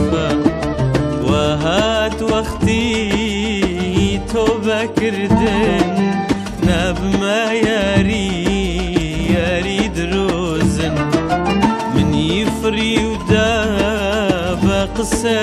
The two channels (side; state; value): both; identical; correlation 1.00